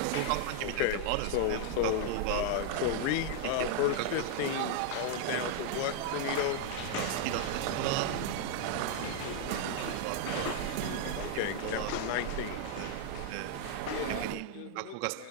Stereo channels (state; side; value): different; both; correlation 0.00